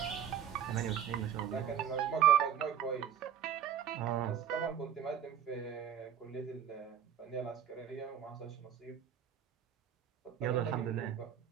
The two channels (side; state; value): left; quieter; 9.1 dB